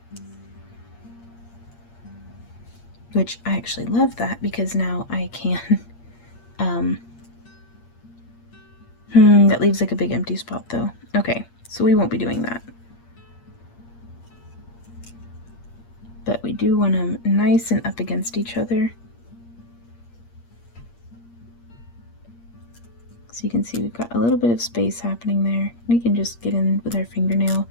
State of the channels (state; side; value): late; right; 8.6 ms